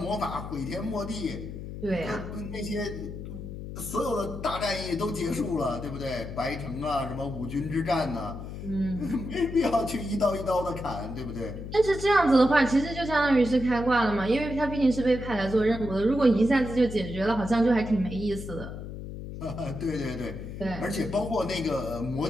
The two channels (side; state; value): left; noise; hum, 9 dB below the sound